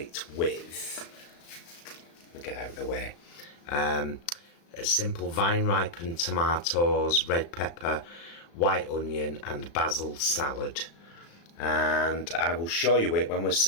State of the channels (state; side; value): late; right; 35 ms